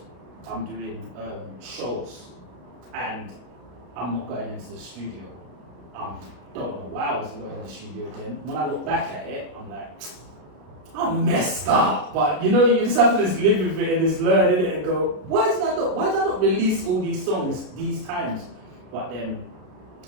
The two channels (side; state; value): left; late; 32 ms